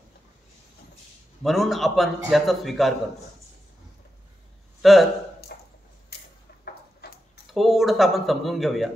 म्हणून आपण याचा स्वीकार करतो. तर थोडंसं आपण समजून घेऊया.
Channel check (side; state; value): both; normal; correlation 0.88